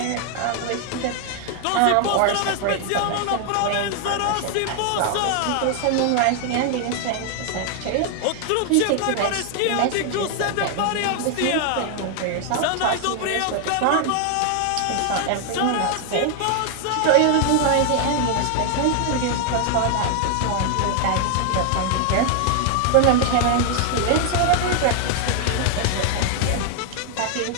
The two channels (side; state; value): both; different; correlation 0.00